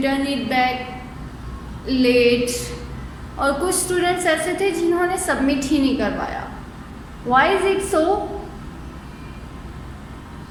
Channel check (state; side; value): identical; both; correlation 1.00